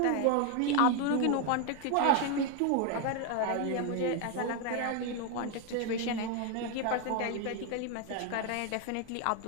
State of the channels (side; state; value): both; different; correlation 0.01